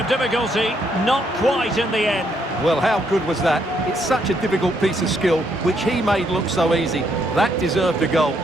difficulty, not quite in the end. Well, how good was that? It's such a difficult piece of skill, which he made look so easy. That deserved a goal.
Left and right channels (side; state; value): both; normal; correlation 0.73